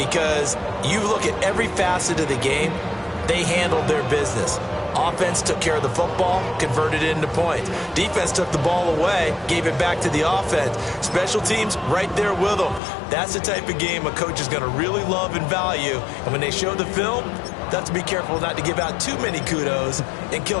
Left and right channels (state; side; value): drops out; right; at 12.8 s